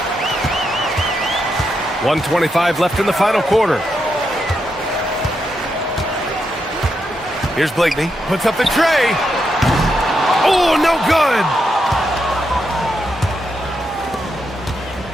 1:25 left in the final quarter. Here's Blakeney. Puts up the tray. Oh, no good.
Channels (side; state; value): both; normal; correlation 0.83